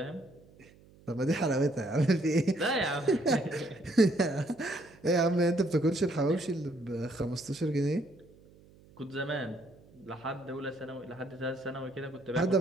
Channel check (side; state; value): right; noise; hum, 26 dB below the sound